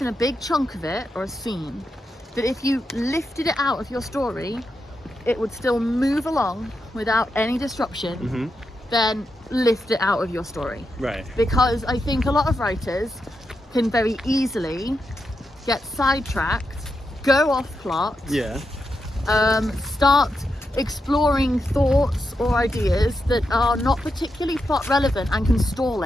a big chunk of it, or a scene, that if you lifted it out of your story, it would still move along without any disruption, then lift it out of your story. Right. Because I think a lot of writers can very easily get sidetracked, go off plot, start exploring thoughts or ideas that are not particularly plot relevant and can stall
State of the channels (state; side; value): normal; both; correlation 0.86